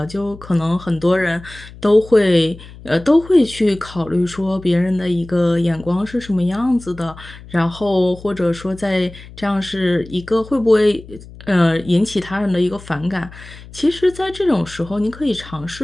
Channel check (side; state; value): left; noise; hum, 18 dB below the sound